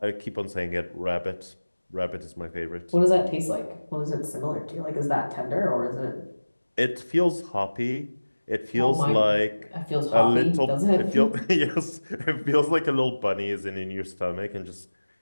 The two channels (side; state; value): both; inverted; correlation -1.00